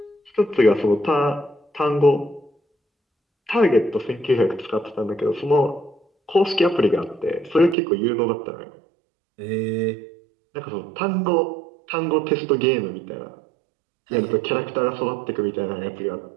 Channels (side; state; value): left; drops out; at 7.8 s